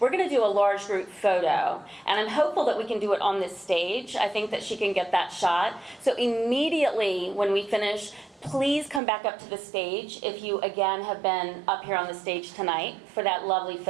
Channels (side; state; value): left; drops out; at 9.0 s